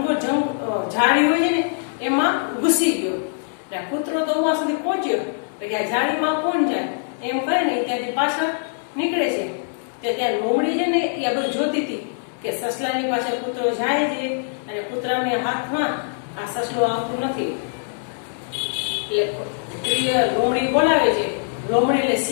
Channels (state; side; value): silent; right; 64 dB below the other